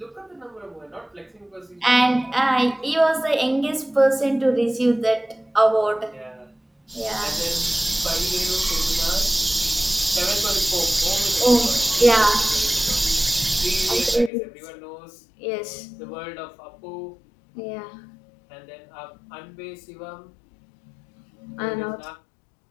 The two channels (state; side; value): drops out; right; at 14.3 s